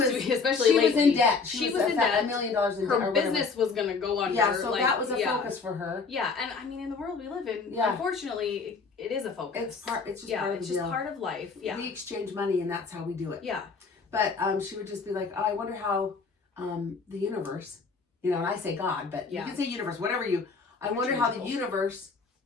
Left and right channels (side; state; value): right; quieter; 4.7 dB